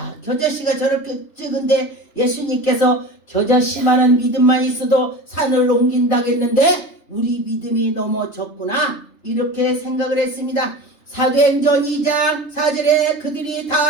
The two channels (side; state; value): right; late; 3.3 ms